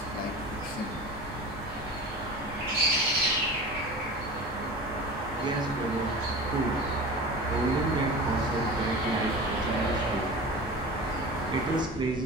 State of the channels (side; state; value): both; normal; correlation 0.34